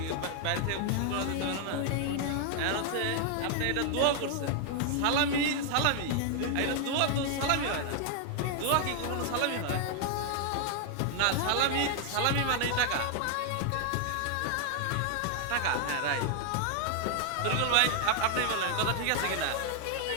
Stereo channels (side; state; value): both; different; correlation 0.00